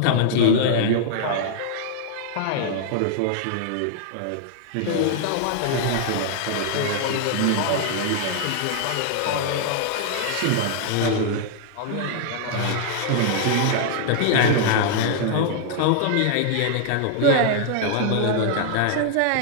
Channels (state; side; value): different; both; correlation 0.00